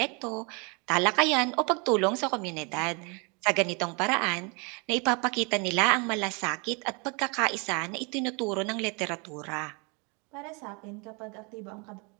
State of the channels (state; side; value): quieter; left; 31.8 dB